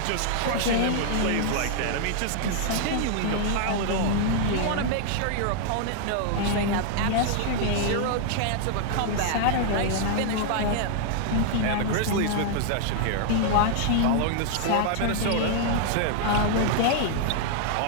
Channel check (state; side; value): different; both; correlation -0.01